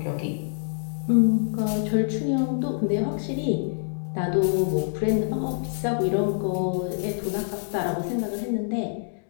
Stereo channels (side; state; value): right; silent; digital silence